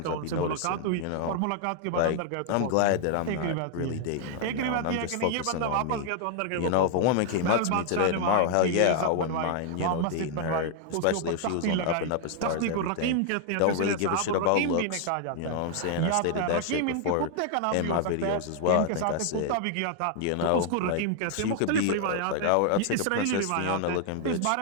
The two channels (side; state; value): both; different; correlation 0.00